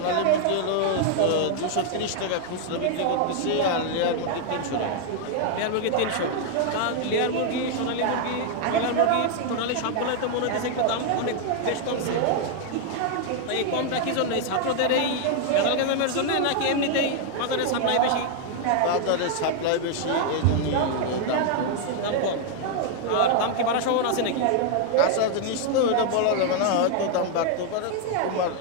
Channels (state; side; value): different; both; correlation 0.00